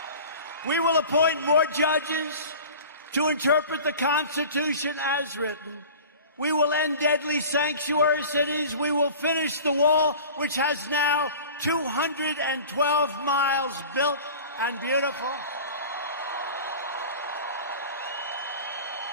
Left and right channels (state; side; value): inverted; both; correlation -0.39